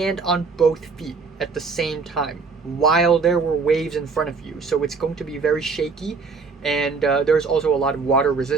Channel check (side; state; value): left; quieter; 4.7 dB